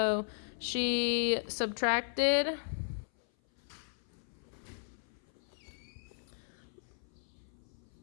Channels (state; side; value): silent; right; 54 dB below the other